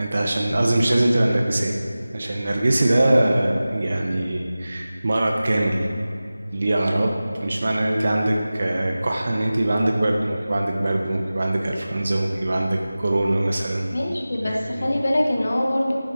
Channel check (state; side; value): inverted; both; correlation -0.97